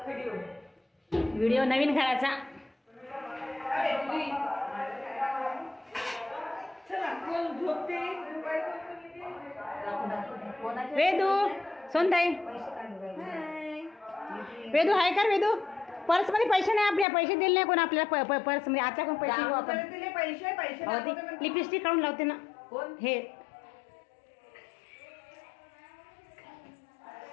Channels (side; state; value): right; drops out; at 17.1 s